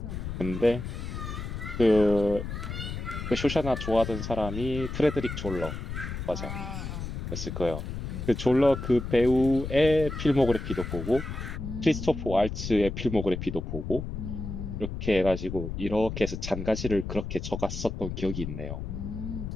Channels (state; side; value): noise; left; rumble, 6 dB below the sound